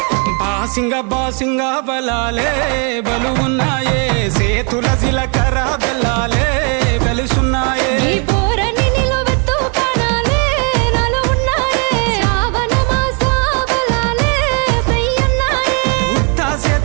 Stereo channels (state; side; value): quieter; left; 37.0 dB